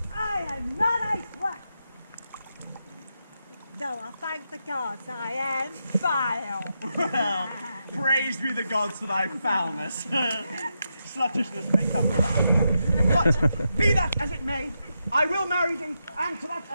I am not a slut. Though I thank the gods I am vile. Well, praised be the gods for thy foulness. Sluttishness may come around. But, be that as it may, I will marry thee, and to that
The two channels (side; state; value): both; inverted; correlation -0.85